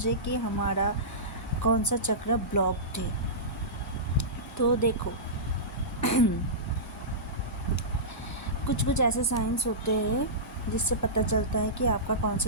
कि हमारा कौन सा चक्र ब्लॉक्ड है। तो देखो कुछ ऐसे साइंस होते हैं जिससे पता चलता है कि आपका कौन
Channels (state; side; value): normal; both; correlation -0.19